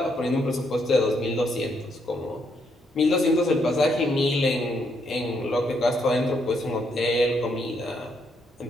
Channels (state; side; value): normal; both; correlation 0.75